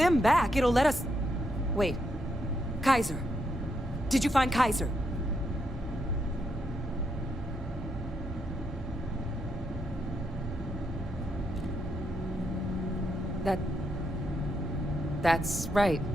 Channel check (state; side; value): normal; both; correlation 0.79